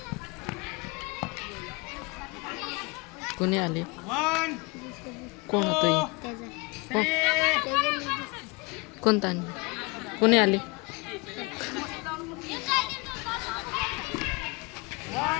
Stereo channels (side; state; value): right; quieter; 27.5 dB